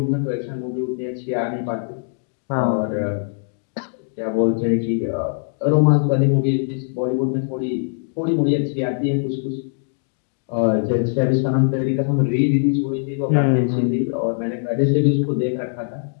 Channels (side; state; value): right; silent; digital silence